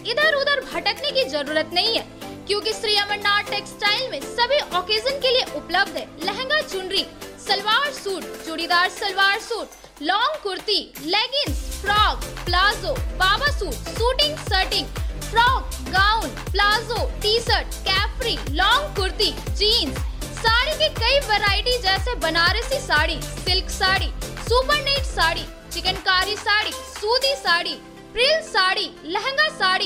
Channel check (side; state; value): both; identical; correlation 1.00